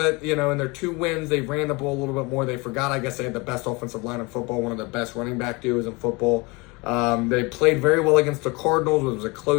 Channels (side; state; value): right; quieter; 26.6 dB